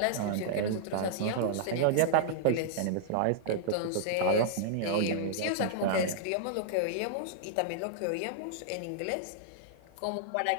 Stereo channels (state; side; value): different; both; correlation -0.01